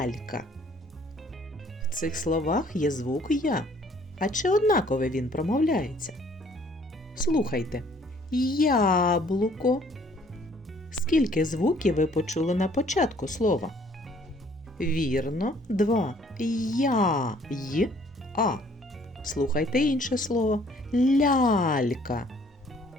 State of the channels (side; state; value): both; normal; correlation 0.59